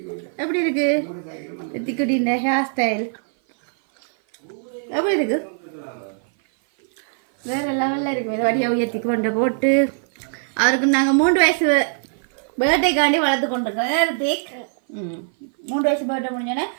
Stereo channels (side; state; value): left; silent; 57 dB below the other